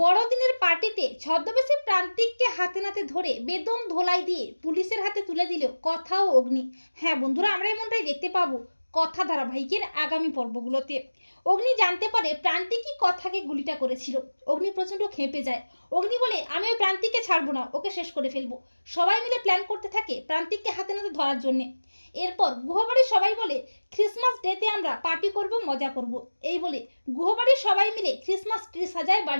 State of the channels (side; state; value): both; inverted; correlation -1.00